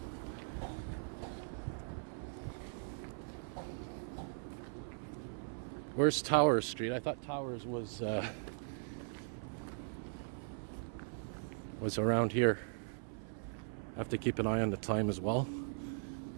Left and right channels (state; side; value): silent; left; 51 dB below the other